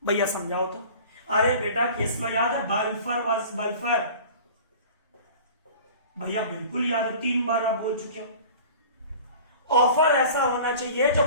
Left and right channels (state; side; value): inverted; both; correlation -0.42